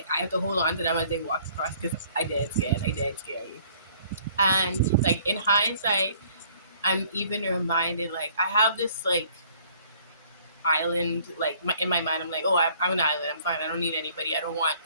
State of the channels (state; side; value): inverted; both; correlation -0.58